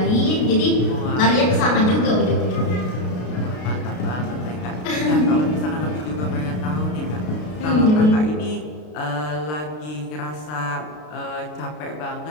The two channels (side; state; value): right; late; 33 ms